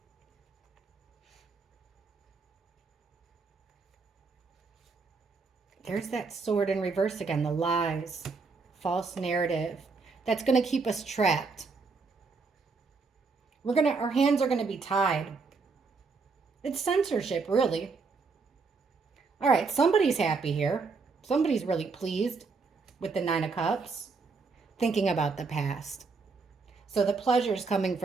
There's that sword in reverse again, the lies, false narrative. That's going to keep us trapped. Our hands are going to be tied. It's censorship, really. All right, somebody's happy here. Somebody's really pleased with the Nine of Cups, thinking about the past. So the pleasure is coming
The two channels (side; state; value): left; quieter; 4.5 dB